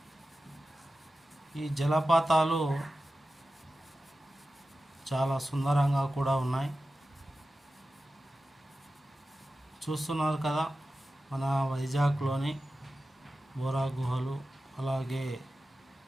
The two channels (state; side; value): normal; both; correlation 0.94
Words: ఈ జలపాతాలు చాలా సుందరంగా కూడా ఉన్నాయి. చూస్తున్నారు కదా మన వైజాగ్లోని బోరా గుహలు. అలాగే